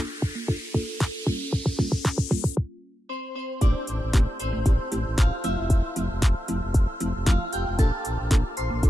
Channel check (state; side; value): normal; both; correlation 0.90